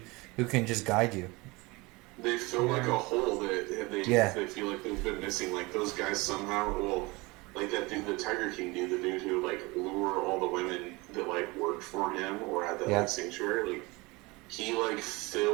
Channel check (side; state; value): left; quieter; 24.2 dB